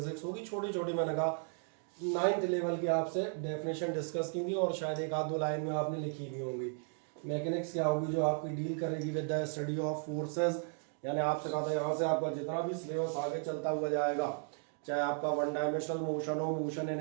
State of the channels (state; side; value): silent; left; 54 dB below the other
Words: होगी। छोटी छोटी मैंने कहा 9th लेवल की आपसे डेफिनेशन डिस्कस की थी और शायद एक आध दो लाइन में आपने लिखी भी होंगी। मैकेनिक्स क्या होगी, जो आपकी डील करेगी with the study of forces. यानी आपसे कहा था यहाँ से आपका जितना भी सिलेबस आगे चलता हुआ जाएगा, चाहे आपका वन डायमेंशनल मोशन हो, motion in